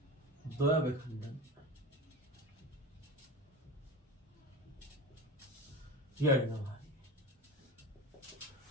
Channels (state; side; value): normal; both; correlation 0.29